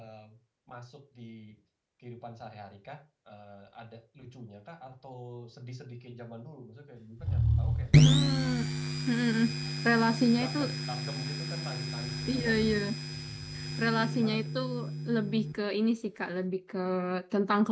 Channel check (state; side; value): identical; both; correlation 1.00